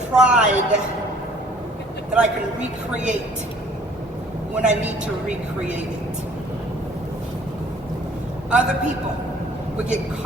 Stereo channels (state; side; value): normal; both; correlation 0.56